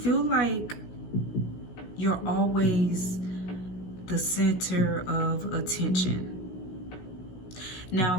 like you're always the center of attention. Now,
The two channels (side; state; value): right; late; 16 ms